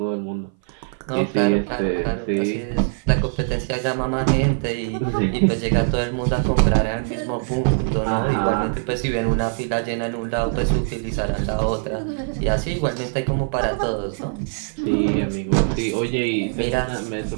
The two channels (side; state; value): left; silent; 57 dB below the other